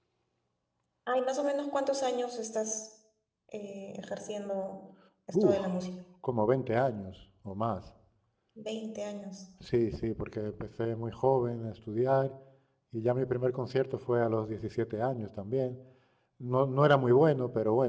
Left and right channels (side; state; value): both; identical; correlation 1.00